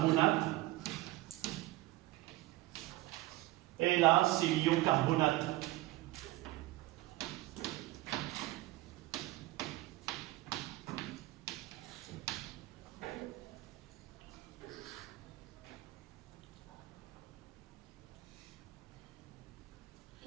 Et là, c'est l'ion carbonate.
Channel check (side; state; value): left; quieter; 18.1 dB